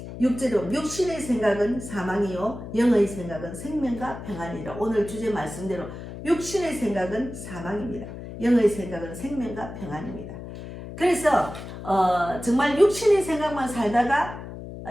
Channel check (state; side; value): noise; left; hum, 11 dB below the sound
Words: 6절에 육신의 생각은 사망이요 영의 생각은 생명과 평안이라. 오늘 주제 말씀대로 육신의 생각은 사망입니다. 영의 생각은 생명과 평안입니다. 그래서 정말 육신의 생각만 살다가